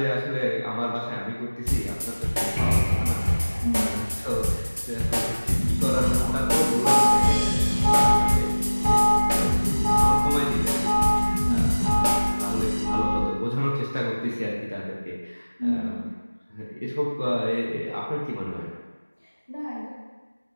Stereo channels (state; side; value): inverted; both; correlation -1.00